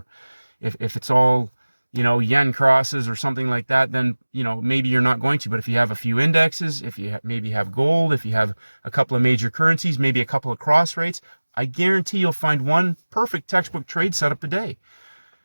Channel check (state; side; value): inverted; both; correlation -1.00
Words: if it's all, yen crosses or something like that, then, maybe you're not going to. But if you have a few indexes, if you maybe have gold, if you have a couple of major currencies, maybe a couple of cross rates, I guarantee you'll find one perfect textbook trade setup a day